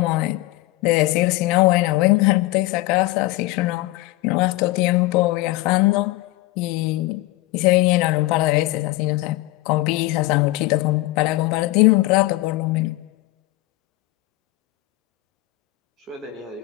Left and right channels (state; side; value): quieter; right; 18.9 dB